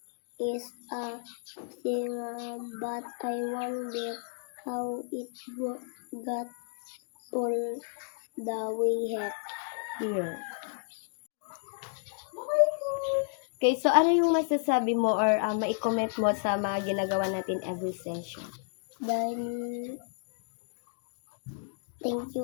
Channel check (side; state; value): right; silent; digital silence